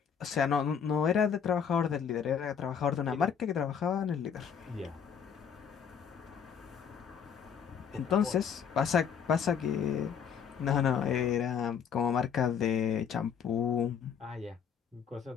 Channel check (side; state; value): right; quieter; 7.4 dB